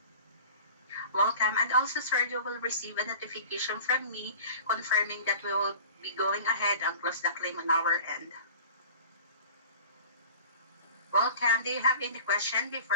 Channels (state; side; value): inverted; both; correlation -0.41